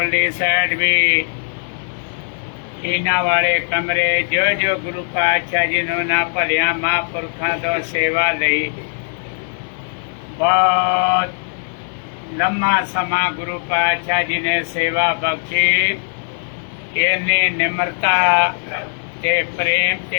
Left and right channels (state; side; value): silent; right; 61 dB below the other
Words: ਸਾਈਡ ਵੀ ਇਹਨਾਂ ਵਾਲੇ ਕਮਰੇ, ਜੋ ਗੁਰੂ ਪਾਤਸ਼ਾਹ ਜੀ ਨੂੰ ਨਾ ਭਲਿਆਂ ਮਹਾਂਪੁਰਖਾਂ ਤੋਂ ਸੇਵਾ ਲਈ, ਬਹੁਤ ਲੰਮਾ ਸਮਾਂ ਗੁਰੂ ਪਾਤਸ਼ਾਹ ਜੀ ਨੇ ਸੇਵਾ ਬਖਸ਼ੀ। ਇੰਨੀ ਨਿਮਰਤਾ ਤੇ ਪ੍ਰੇਮ